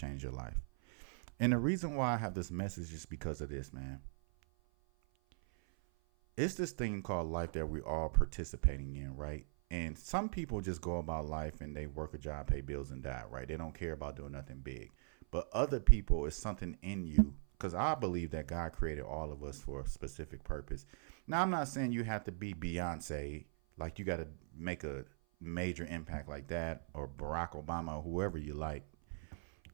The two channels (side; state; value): left; silent; 51 dB below the other